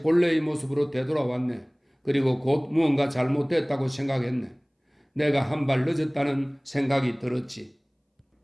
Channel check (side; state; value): both; identical; correlation 1.00